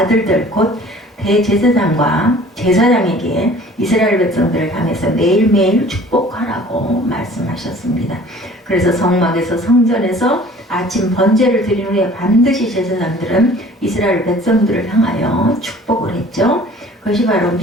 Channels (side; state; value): both; normal; correlation 0.49